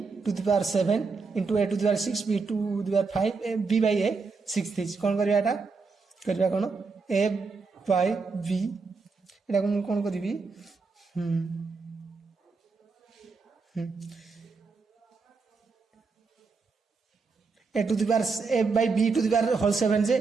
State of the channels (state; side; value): quieter; left; 4.5 dB